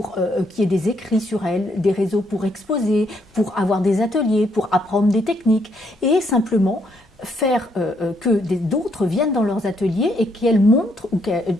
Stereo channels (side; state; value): both; normal; correlation 0.73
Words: qu'il y ait des écrits sur elles, des réseaux pour exposer, pour avoir des ateliers, pour apprendre des techniques, et simplement faire que d'autres viennent dans leurs ateliers et qu'elles montrent, ou